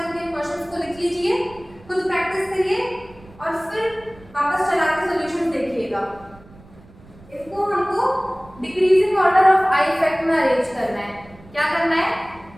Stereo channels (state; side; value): noise; right; rumble, 23 dB below the sound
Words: क्वेश्चंस को लिख लीजिए, खुद प्रैक्टिस करिए और फिर वापस चला के सॉल्यूशन देखिएगा। इसको हमको decreasing order of I effect में अरेंज करना है। क्या करना है,